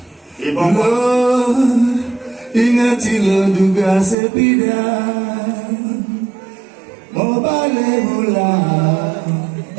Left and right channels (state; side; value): drops out; left; at 4.2 s